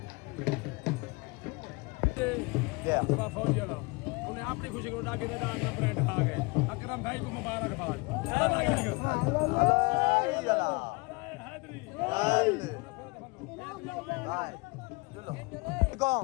उन्हें अपनी खुशी को उठा के दान का ब्रांड खा गए अकरम भाई को मुबारकबाद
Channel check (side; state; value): right; quieter; 26.8 dB